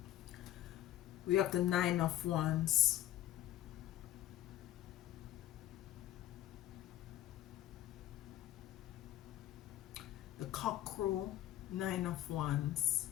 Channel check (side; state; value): right; quieter; 12.8 dB